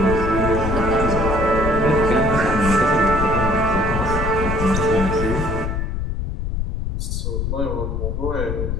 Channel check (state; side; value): noise; left; rumble, 2 dB below the sound